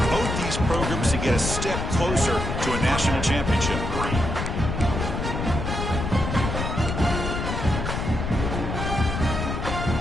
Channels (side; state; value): left; noise; rumble, 3 dB below the sound